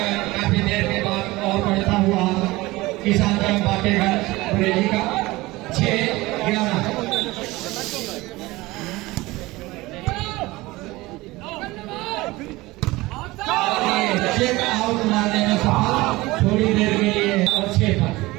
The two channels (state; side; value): quieter; left; 20.3 dB